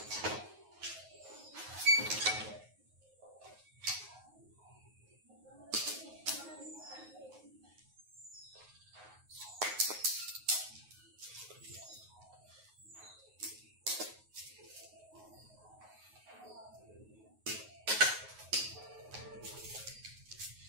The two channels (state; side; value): late; left; 9.4 ms